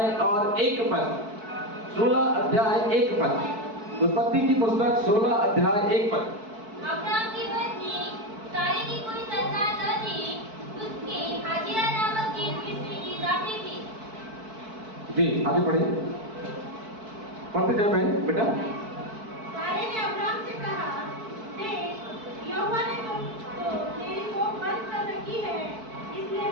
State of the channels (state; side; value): late; left; 4.5 ms